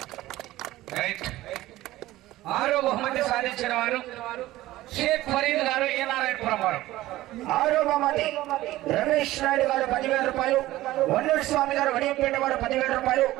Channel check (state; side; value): quieter; left; 16.4 dB